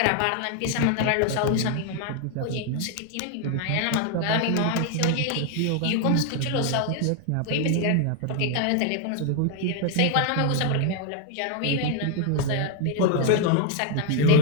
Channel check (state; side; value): different; both; correlation 0.00